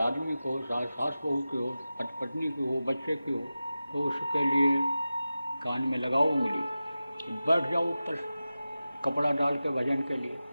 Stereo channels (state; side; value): inverted; both; correlation -0.95